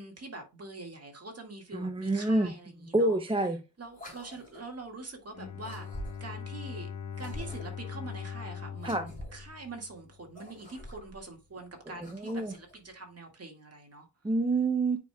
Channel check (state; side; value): normal; both; correlation 0.57